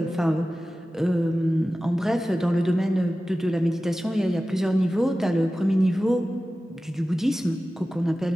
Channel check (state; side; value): normal; both; correlation 0.95